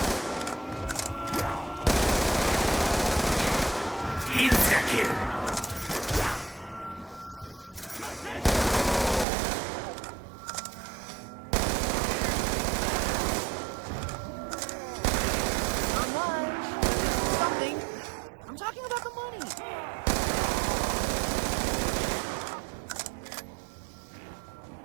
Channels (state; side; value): drops out; left; at 9.2 s